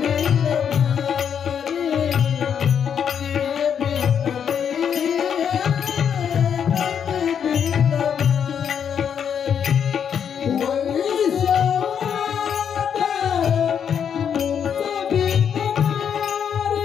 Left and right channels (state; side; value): quieter; right; 7.9 dB